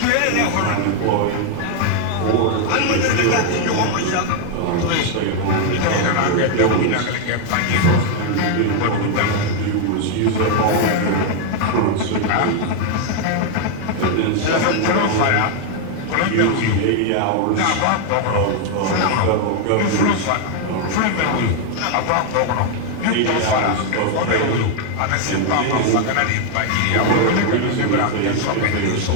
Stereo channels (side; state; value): both; different; correlation 0.00